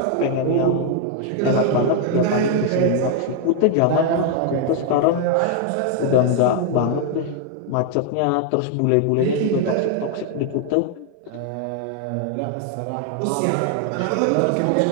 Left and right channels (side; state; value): both; different; correlation 0.00